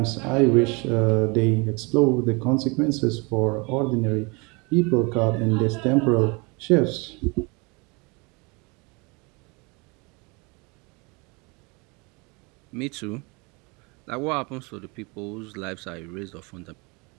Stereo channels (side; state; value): left; quieter; 28.6 dB